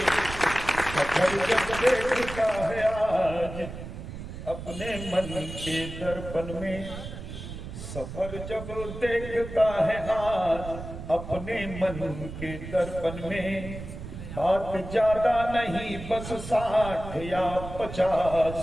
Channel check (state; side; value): noise; right; rumble, 10 dB below the sound